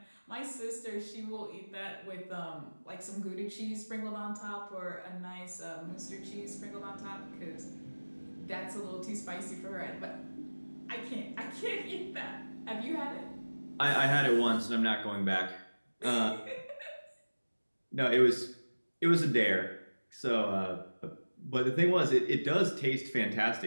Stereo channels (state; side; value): inverted; both; correlation -1.00